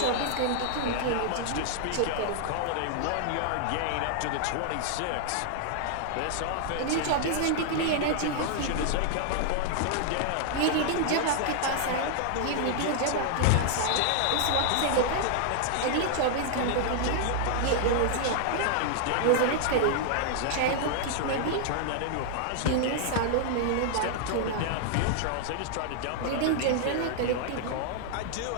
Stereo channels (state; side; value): different; both; correlation -0.01